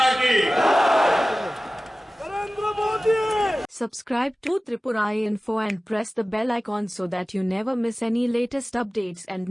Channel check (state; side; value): normal; both; correlation 0.97